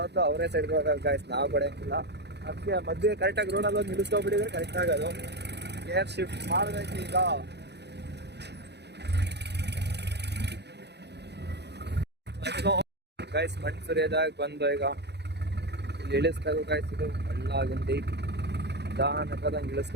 ಅವರೇ ಸೈಡ್ ಕೊಡ್ತಾರೆ ಗೈಸ್, ನಾವು ಕೊಡೋಂಗಿಲ್ಲ. ಅದಕ್ಕೆ ಮಧ್ಯೆ ಕರೆಕ್ಟಾಗಿ ರೋಡಲ್ಲಿ ಒಂದು ನಿಲ್ಲಿಸ್ಕೊಬಿಟ್ಟಿದ್ರೆ ಕರೆಕ್ಟ್ ಆಗೋದು. ಏರ್ ಶಿಫ್ಟ್ ಮಾಡಬೇಕು ಈಗ. ಗೈಸ್ ಮಣ್ಣು ಸುರಿಯೋದಾಗ ಬಂದು ಈಗ ಇಲ್ಲಿ ಇಳಿಸ್ಬೇಕು ಗೈಸ್. ಇದು ಹಳ್ಳ ಗುಂಡಿ ನಿಧಾನಕ್ಕದಂಗೆ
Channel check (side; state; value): left; late; 0.49 ms